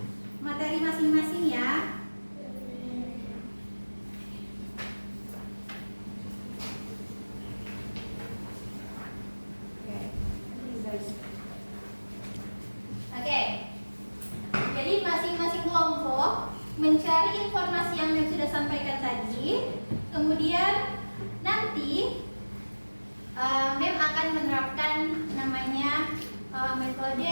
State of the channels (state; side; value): inverted; both; correlation -1.00